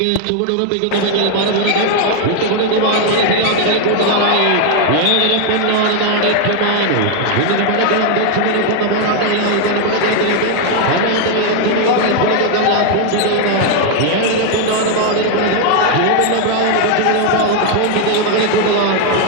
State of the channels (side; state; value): both; different; correlation 0.00